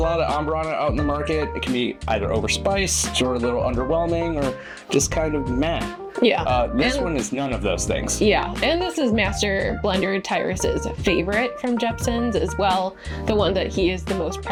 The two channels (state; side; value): identical; both; correlation 1.00